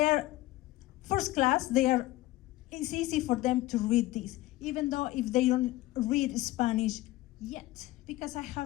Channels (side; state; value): right; quieter; 17.5 dB